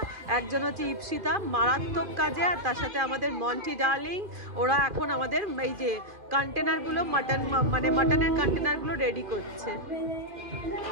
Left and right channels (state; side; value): late; left; 2.4 ms